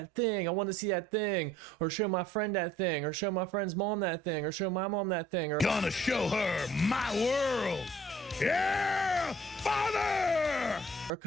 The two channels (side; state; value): both; normal; correlation 0.57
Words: thing? I want to see that thing, or show my friend that thing, or show my friend's mom that thing, or show my mom that thing, or gonna show her my world. Yeah, father! Or